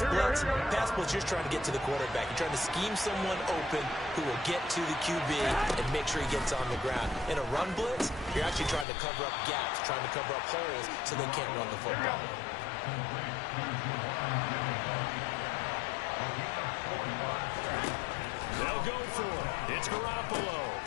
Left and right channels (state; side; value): drops out; right; at 8.8 s